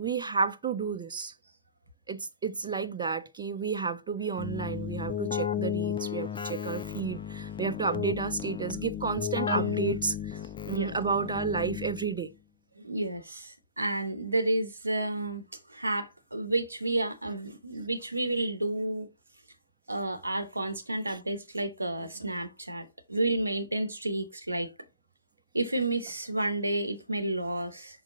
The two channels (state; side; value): inverted; both; correlation -0.50